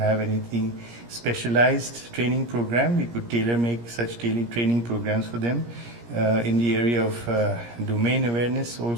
anything specialized training program, we could tailor make such training programs for them. In the area of domain awareness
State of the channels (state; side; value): late; left; 17 ms